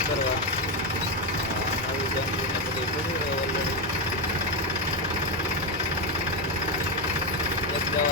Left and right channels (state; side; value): normal; both; correlation 0.09